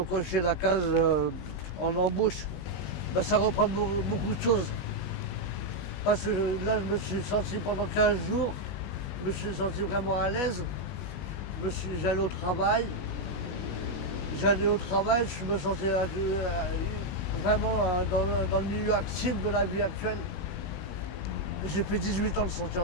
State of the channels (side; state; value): right; late; 19 ms